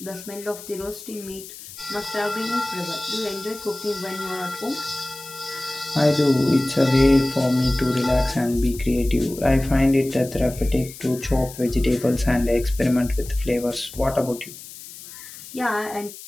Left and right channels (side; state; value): left; noise; hiss, 15 dB below the sound